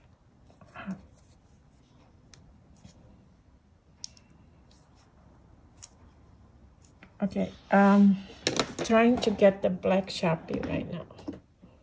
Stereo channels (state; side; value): identical; both; correlation 1.00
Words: hard. Okay, trying to get the black Sharpie right now.